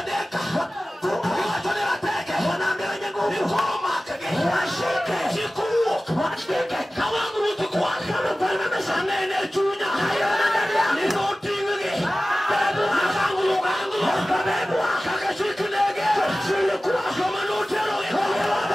deka. Iwatone wateke. Nikoro makege. Chikuo. Kawangu rutu kwa. Sanene chunya. Nino tingege. Nakangu lugangu. Kaka chikunege. Kama nutero.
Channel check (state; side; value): normal; both; correlation 0.96